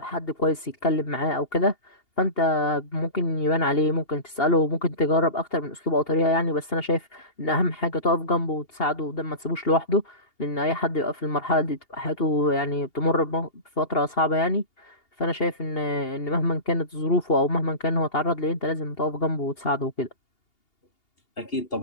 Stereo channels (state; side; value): late; right; 2.8 ms